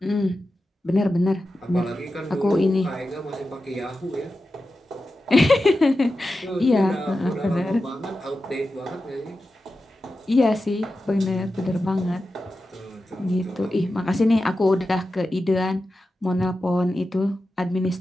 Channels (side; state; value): both; normal; correlation 0.92